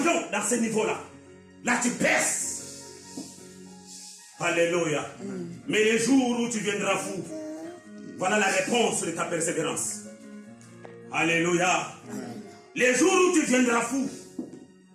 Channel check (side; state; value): both; identical; correlation 1.00